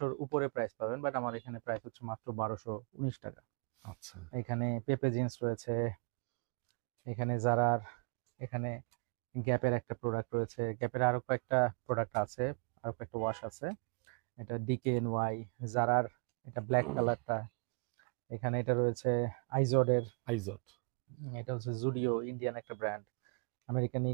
উপরে প্রাইস পাবেন, বাট আমার এখানে প্রাইস হচ্ছে মাত্র 1219 টাকা। আচ্ছা, এখানে পেপে জিন্স রয়েছে, এখানে জারার, এখানে গ্যাপের একটা প্রোডাক্ট রয়েছে, গ্যাপের আরো কয়েকটা প্রোডাক্ট আছে, আরো কয়েকটা ওয়াশ আছে। এটা ডিকেএনওয়াই, জারার, এটা ব্ল্যাক কালারটা। এখানে এটা রয়েছে আইজোডের, আইজট। এটা হচ্ছে জুডিও, ইন্ডিয়ান একটা ব্র্যান্ড। আমেরিকান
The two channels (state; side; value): quieter; left; 39.3 dB